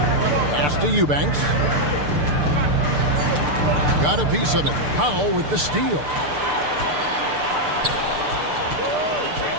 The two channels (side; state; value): left; late; 6.7 ms